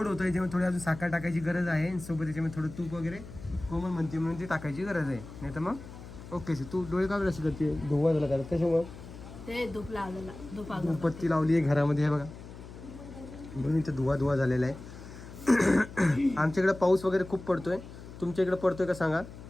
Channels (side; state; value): left; noise; hum, 14 dB below the sound